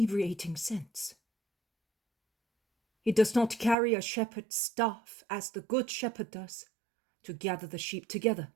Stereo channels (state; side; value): drops out; left; at 3.8 s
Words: scents. He does not carry a shepherd's staff as the good shepherd does, to gather the sheep together